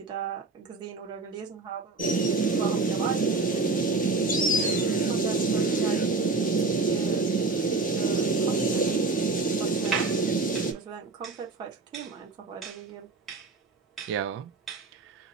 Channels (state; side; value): quieter; left; 3.6 dB